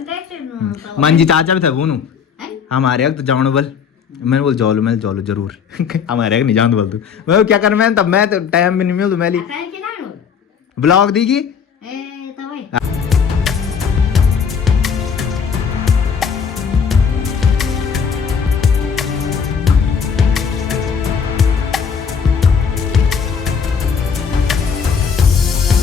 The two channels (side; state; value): right; quieter; 6.6 dB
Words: मंजी चाचा भी थे वो हमारे तो जानो बल मैंने बोल जोलो जरूर हमारे नहीं जान बोल तू मैं क्या कर मैं तब मैं तो टाइम भी नहीं मिल मैं ब्लॉग देगी